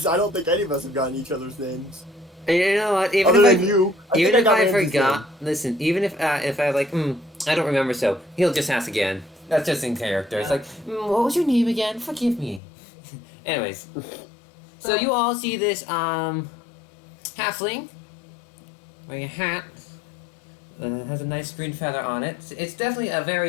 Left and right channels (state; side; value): drops out; right; at 12.6 s